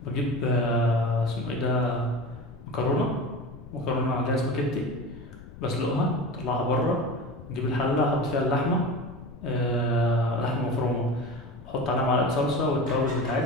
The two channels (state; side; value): noise; left; rumble, 17 dB below the sound